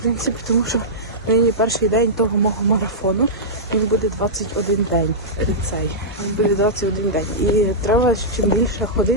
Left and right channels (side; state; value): both; normal; correlation -0.12